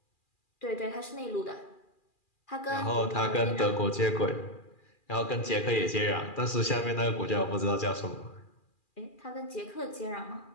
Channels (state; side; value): late; right; 2.4 ms